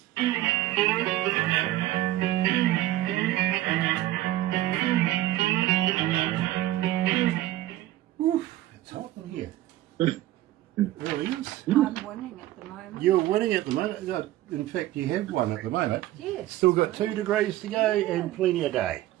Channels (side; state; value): left; quieter; 15.1 dB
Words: Oof, it's hot in here. It really is. I'm winning at the moment. You're winning at the moment. In fact, you have one at the moment. Yes. Still got 2 degrees to go and plenty of day.